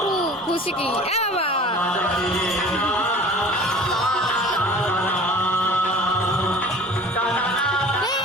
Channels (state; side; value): normal; both; correlation 0.43